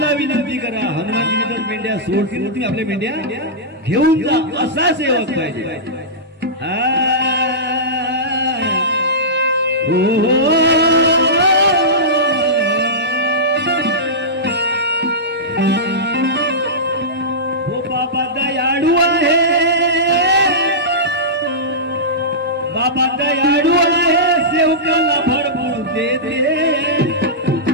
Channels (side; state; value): both; normal; correlation -0.16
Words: विनंती करा, हनुमानजी तर मेंढ्या सोडतील, तुम्ही आपल्या मेंढ्या घेऊन जा. असा सेवक पाहिजे. हो बाबा दयाळू आहे, बाबा दयाळू आहे, सेवकाला भरपूर देते.